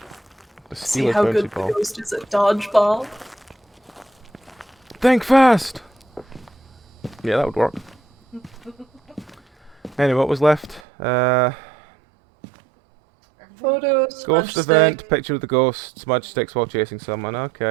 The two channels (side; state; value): left; drops out; at 10.8 s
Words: The See steal how his good bouncy the ball. ghost is at dodgeball? Think fast. Yeah, that would work. Anyway, what was left? Photos, Ghost smudge event, stick. picture of the ghost, smudge sticks while chasing someone.